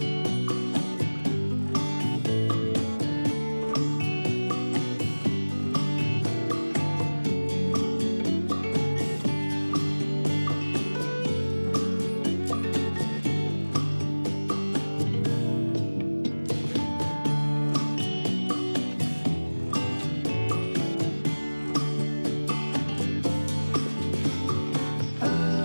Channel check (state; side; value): inverted; both; correlation -1.00